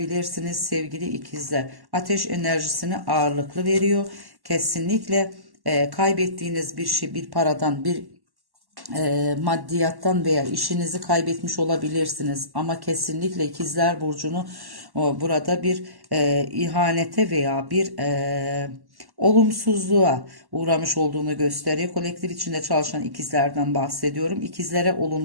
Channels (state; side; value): late; left; 1.1 ms